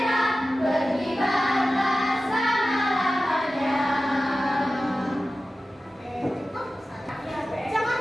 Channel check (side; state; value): both; normal; correlation 0.95